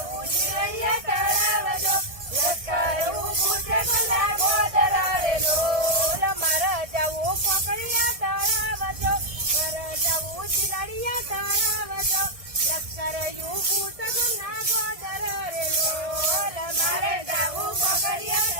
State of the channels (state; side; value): late; left; 1.6 ms